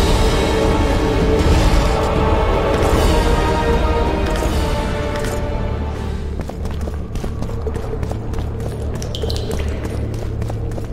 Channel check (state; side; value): identical; both; correlation 1.00